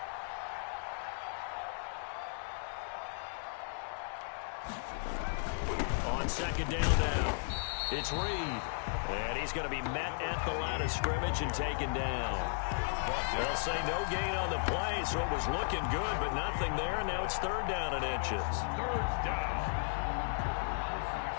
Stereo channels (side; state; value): right; silent; digital silence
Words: On 2nd down now, it's Reed. And he's going to be met at the line of scrimmage and taken down. They'll say no gain on the play, so it was looking good, but nothing there. And now it's 3rd down and inches. 3rd down.